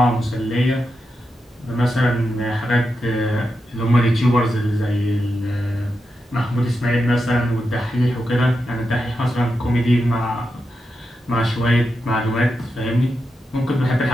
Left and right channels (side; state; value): both; normal; correlation 0.87